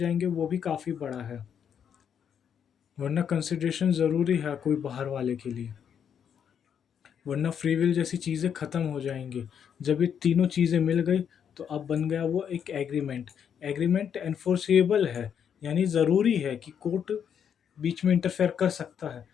वो भी काफ़ी बड़ा है, वरना कंसिडरेशन ज़रूरी है कोई बाहर वाले के लिए, वरना फ्री विल जैसी चीज़ें ख़त्म हो जाएंगी। जब ये तीनों चीज़ें मिल गई तो अब बन गया वो एक एग्रीमेंट। एग्रीमेंट एनफोर्सेबल है, यानी ज़रूरी है कि कोर्ट बीच में इंटरफेयर कर सकता है,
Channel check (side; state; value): right; quieter; 8.1 dB